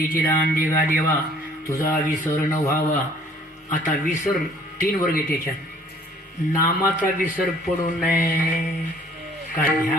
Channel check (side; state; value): both; normal; correlation 0.56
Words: चिदान देवा देवा तुझा विसर न व्हावा. आता विसर 3 वर्ग आहे त्याच्यात. नामाचा विसर पडू नये, का